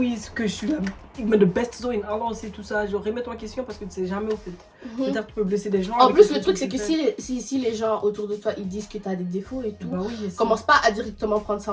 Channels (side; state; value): both; identical; correlation 1.00